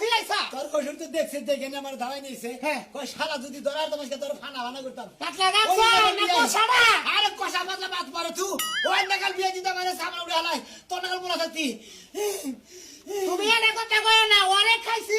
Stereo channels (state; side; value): identical; both; correlation 1.00